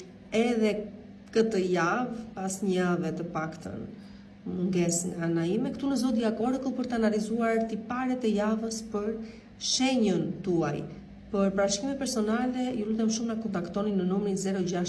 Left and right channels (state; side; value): identical; both; correlation 1.00